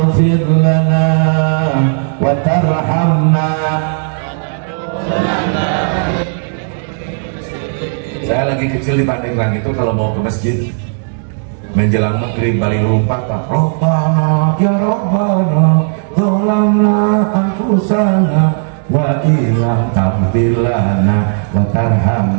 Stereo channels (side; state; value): left; silent; 68 dB below the other